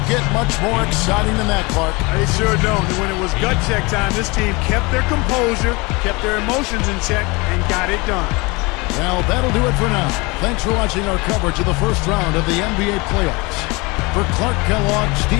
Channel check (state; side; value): quieter; right; 26.0 dB